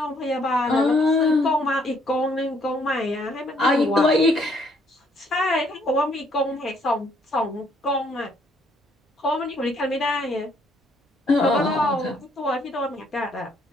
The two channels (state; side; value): normal; both; correlation 0.67